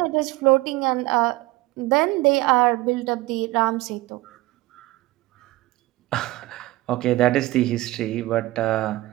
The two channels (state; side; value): quieter; left; 18.7 dB